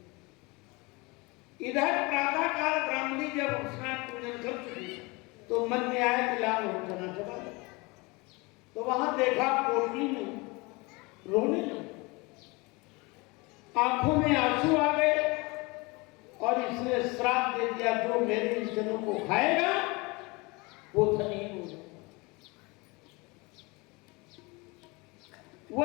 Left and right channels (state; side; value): quieter; right; 25.8 dB